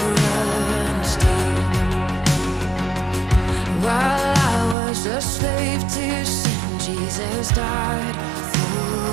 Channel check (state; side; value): drops out; left; at 4.8 s